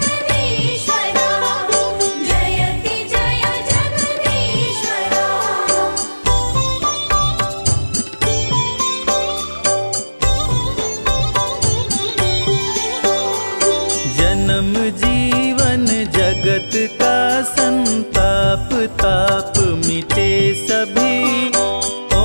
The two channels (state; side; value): inverted; both; correlation -1.00